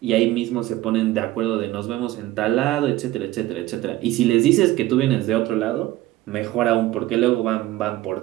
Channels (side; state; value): left; quieter; 16.1 dB